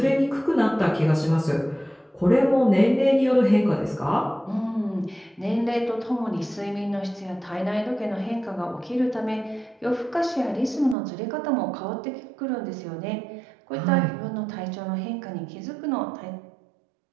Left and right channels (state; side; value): drops out; left; at 11.0 s